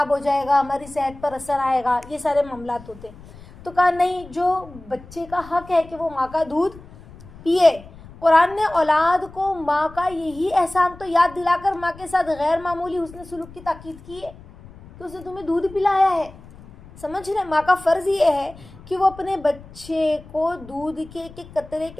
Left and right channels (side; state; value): left; noise; rumble, 20 dB below the sound